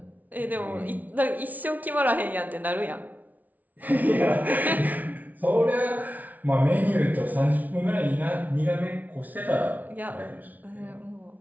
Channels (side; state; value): left; late; 0.076 ms